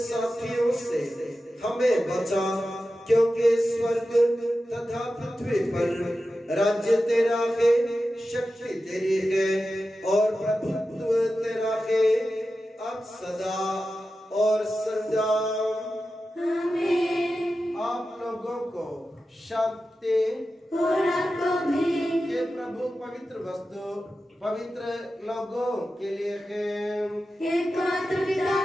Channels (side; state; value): both; normal; correlation 0.92